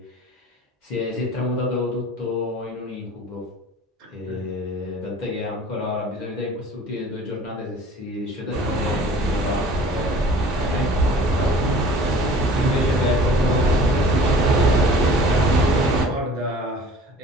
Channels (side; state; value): both; normal; correlation 0.46